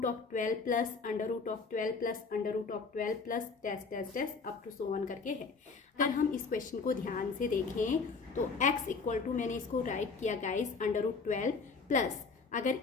plus √12 plus √12 plus dash dash dash up to so on करके है। अगर हम इस क्वेश्चन को ध्यान से देखें तो x इक्वल टू, मैंने इसको राइट किया गाइस √12 प्लस, अगर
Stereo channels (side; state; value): right; quieter; 4.7 dB